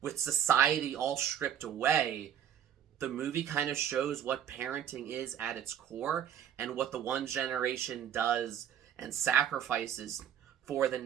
with society all stripped away, the movie kind of shows what parenting is at its core and what the one generation does and sacrifices for the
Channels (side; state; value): left; quieter; 9.4 dB